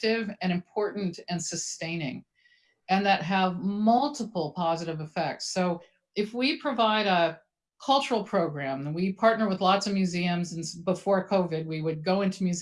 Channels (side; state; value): both; identical; correlation 1.00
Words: and important and sustaining and that have multiple positive effects. So if we provide a cultural program, and we partner with lots of museums, and before COVID, we would go into